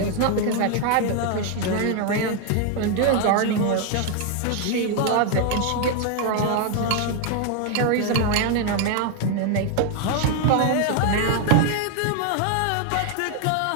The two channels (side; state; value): both; different; correlation 0.00